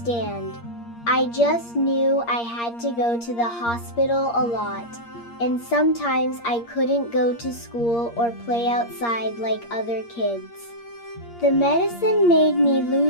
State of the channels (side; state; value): right; late; 8.6 ms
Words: I just knew I had to go to the hospital a lot, and sometimes I couldn't go to school or play outside like other kids. The medicine made me